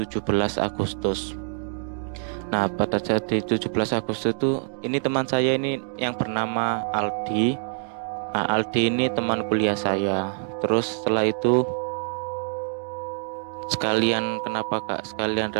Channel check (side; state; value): left; silent; digital silence